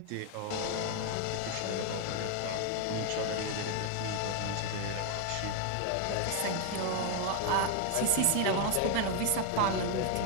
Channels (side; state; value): both; different; correlation 0.01